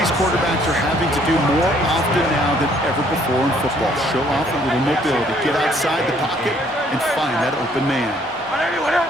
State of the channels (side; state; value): both; normal; correlation 0.63